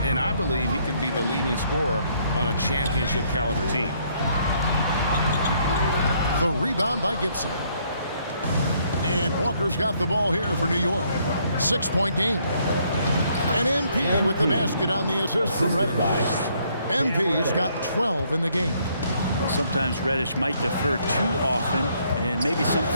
And I believe he can be the leading scorer on a championship caliber team. The rebound by Gibson. And Walker's got the ball here for New York. 6-point game. And MP with the basket on the assist from Reddish. MP's got 12 in the game. Sometimes Reddish might defer too often, and maybe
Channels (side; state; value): both; inverted; correlation -0.68